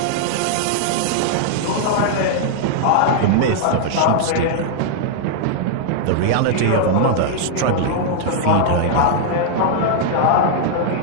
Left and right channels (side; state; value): both; different; correlation -0.01